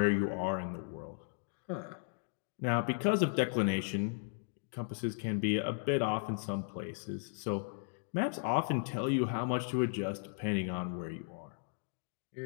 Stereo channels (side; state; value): right; silent; digital silence